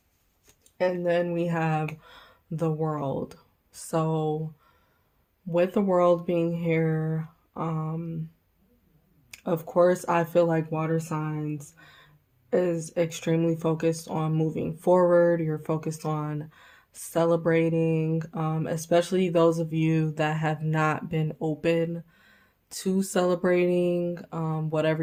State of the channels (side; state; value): both; identical; correlation 1.00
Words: And then we have the world. So with the world being here, of course, I feel like water signs is extremely focused on moving forward. You're focused on celebrating, especially those of you that have not been open to celebrating, whatever